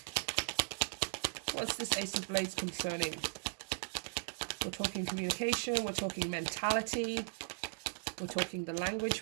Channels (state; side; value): silent; left; digital silence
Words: What's this Ace of Blades concerning? We're talking communication, we're talking mentality, we're talking the language